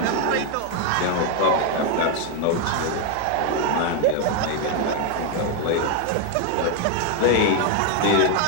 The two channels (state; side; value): different; both; correlation 0.01